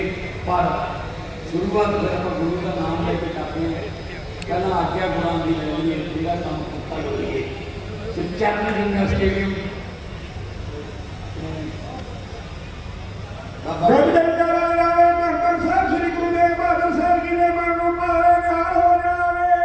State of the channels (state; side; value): identical; both; correlation 1.00